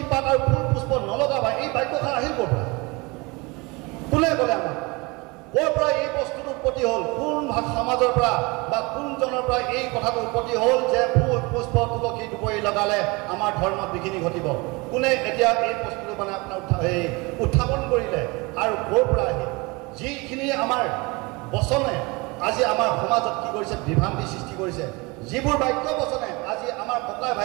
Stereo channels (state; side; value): quieter; left; 25.9 dB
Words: পাত আৰু ফুল পুষ্প নলগাবা এই বাক্যখন আহিল ক'ৰ পৰা কোনে ক'লে আমাক ক'ৰ পৰা এই বস্তুটো উৎপত্তি হ'ল কোন সমাজৰ পৰা বা কোনজনৰ পৰা এই কথাটো উৎপত্তি হ'ল যে ফুল পুষ্প তুলসী দুপৰি লগালে আমাৰ ধৰ্মত বিঘিনি ঘটিব কোনে এতিয়া এই বস্তুটো মানে আপোনাৰ উত্থাপন কৰিলে আৰু ক'ৰ পৰা আহিল যিখিনি আমাৰ বচনে আজি আমাৰ সমাজত কি কৰিছে বিভ্ৰান্তি সৃষ্টি কৰিছে যিবোৰ বাক্য বচনে আজি আমাৰ ককাই